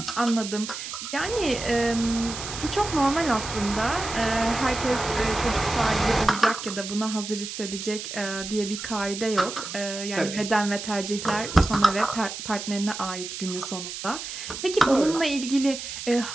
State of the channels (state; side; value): noise; right; hiss, 8 dB below the sound